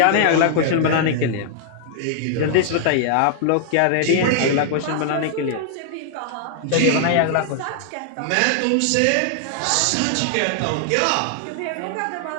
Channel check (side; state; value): both; different; correlation -0.01